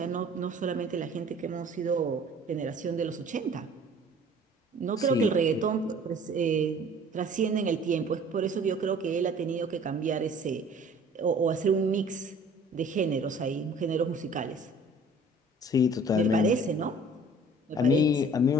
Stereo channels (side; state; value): both; normal; correlation 0.50